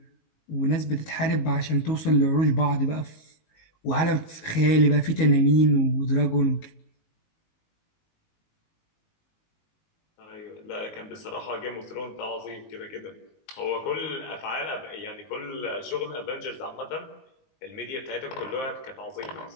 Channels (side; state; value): right; late; 19 ms